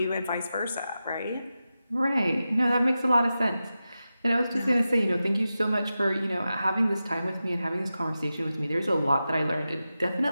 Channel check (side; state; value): both; inverted; correlation -0.92